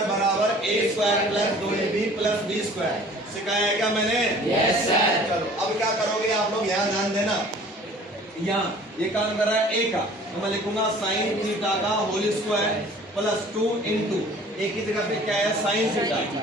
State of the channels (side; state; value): both; normal; correlation 0.49